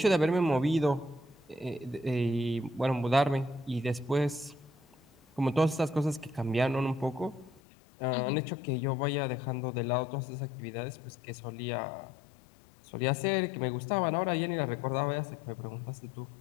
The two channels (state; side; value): drops out; right; at 7.6 s